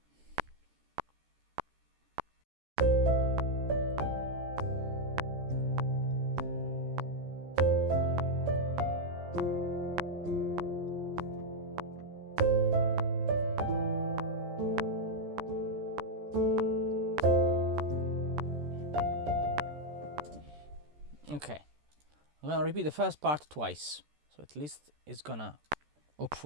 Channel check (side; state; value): left; late; 14 ms